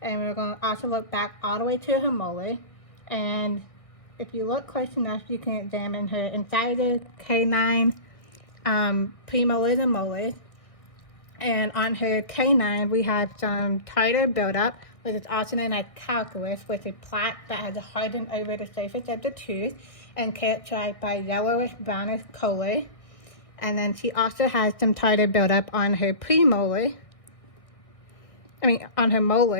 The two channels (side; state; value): right; late; 1.6 ms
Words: and we're going to also look back all the way to her molar. And if you look close enough, you can examine her incisors, canine, premolars and molars. And on her canine, we have some tartar buildup, which is also known as calculus, which is plaque that has hardened over the surface of the tooth and characterized by yellowish brownish color. And then she also has some tartar buildup on her on her